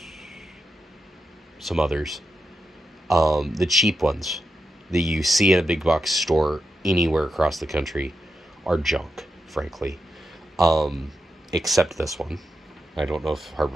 some others. The cheap ones that you see in a big box store anywhere across the country are junk, frankly. Um, except this one. I don't know if Harbor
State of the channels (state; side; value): normal; both; correlation 0.87